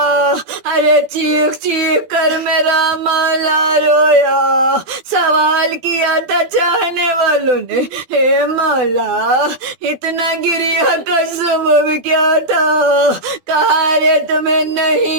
ارے چیخ چیخ کر میرا مولا رویا، سوال کیا تھا چاہنے والوں والوں نے اے مولا اتنا گریا کا سبب کیا تھا؟ کہا رے تمہیں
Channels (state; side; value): late; left; 12 ms